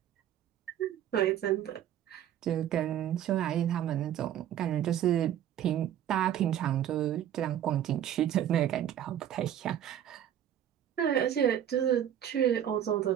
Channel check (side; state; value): left; quieter; 10.7 dB